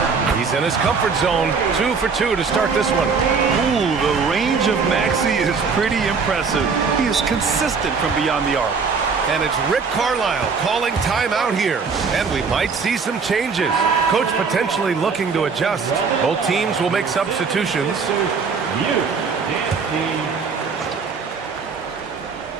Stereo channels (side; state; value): left; quieter; 5.2 dB